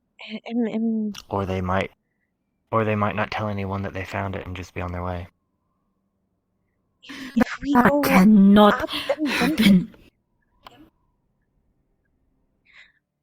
Or they might not tell anyone that they found it and just be on their way. If we That go cannot up, happen.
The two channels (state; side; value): identical; both; correlation 1.00